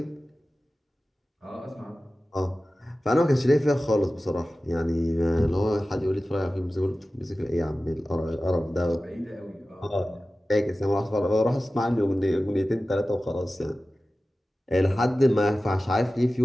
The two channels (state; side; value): normal; both; correlation 0.96